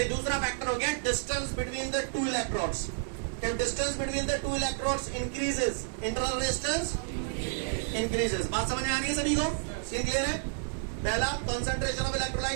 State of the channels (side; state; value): left; silent; 57 dB below the other